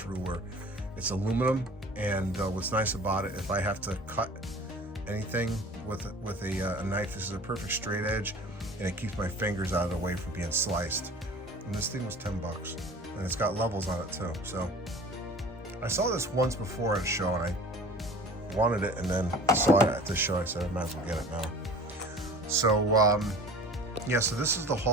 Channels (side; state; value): both; normal; correlation 0.43